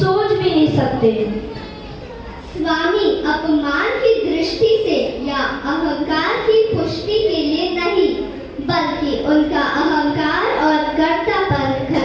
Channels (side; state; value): both; identical; correlation 1.00